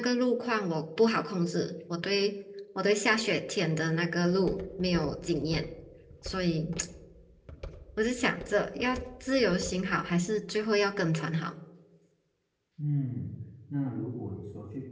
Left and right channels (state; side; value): identical; both; correlation 1.00